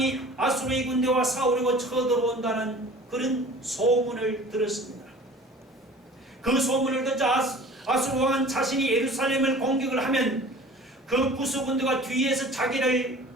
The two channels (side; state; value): both; normal; correlation 0.45